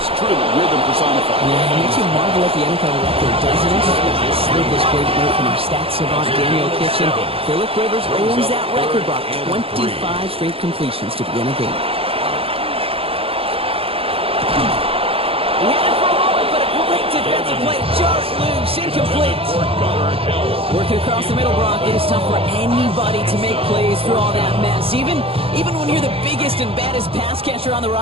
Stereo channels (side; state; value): left; late; 0.27 ms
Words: It's truly rhythm personified. Yeah, it makes you marvel at the NFL record, doesn't it? Slid this great note from our stats savant Daniel Kitchen. Phillip Rivers owns that record, Brock. 25 straight completions to begin a game. He had it for a moment, but a great defensive play. Jarrett loose, incomplete. Working across the middle, Brock, it is tough for anybody to make plays through all that mess, even when you're the biggest and baddest pass catcher on the